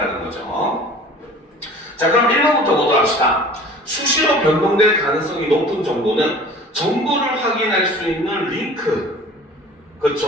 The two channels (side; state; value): both; normal; correlation 0.45